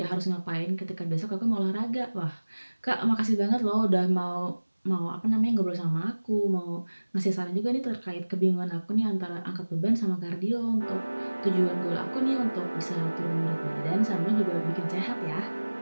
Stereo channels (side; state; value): both; inverted; correlation -1.00